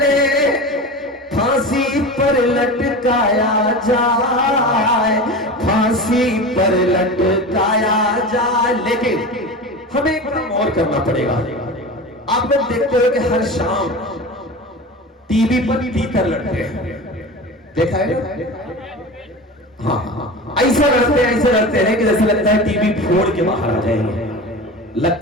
फांसी पर लटकाया जाए, फांसी पर लटकाया जाए। लेकिन हमें एक काम और करना पड़ेगा। आप लोग देखते हो कि हर शाम टीवी पर तीतर लड़ते हैं, देखा है ना? हाँ हाँ, ऐसा लड़ते हैं कि जैसे लगता है टीवी फोड़ के बाहर आ जाएंगे,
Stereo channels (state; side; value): normal; both; correlation 0.30